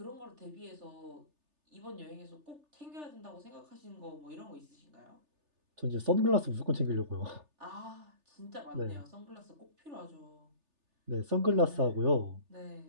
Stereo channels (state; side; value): late; left; 3.4 ms